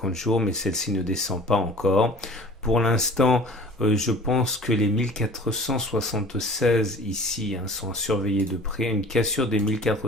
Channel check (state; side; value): normal; both; correlation 0.45